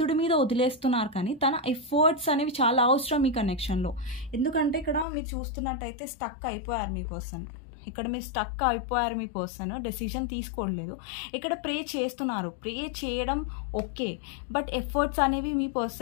మీద వదిలేస్తున్నారు. కానీ తన ఎఫర్ట్స్ అనేవి చాలా అవసరం మీ కనెక్షన్లో. ఎందుకంటే ఇక్కడ మీరు చూస్తున్నట్టయితే స్టక్ అయిపోయారు మీ పర్సన్. ఇక్కడ మీరు స్టక్ అయిపోయారు, మీ పర్సన్ డెసిషన్ తీసుకోవట్లేదు. ఇక్కడ ప్రే చేస్తున్నారు, ప్రే చేయడం ఓకే, బట్ ఎఫర్ట్స్ అనేవి మీ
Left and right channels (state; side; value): drops out; right; at 5.1 s